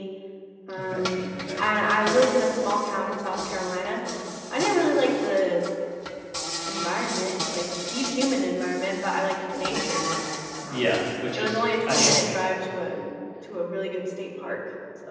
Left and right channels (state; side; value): identical; both; correlation 1.00